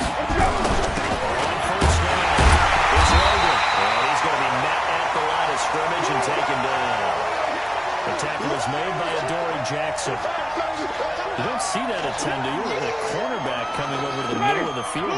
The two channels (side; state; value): both; identical; correlation 1.00